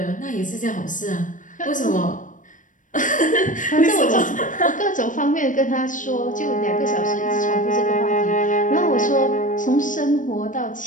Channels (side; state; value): right; late; 0.38 ms